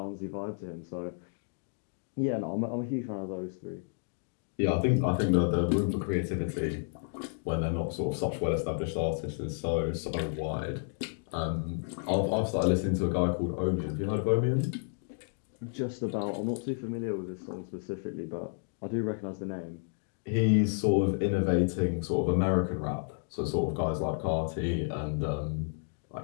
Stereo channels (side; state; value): right; silent; digital silence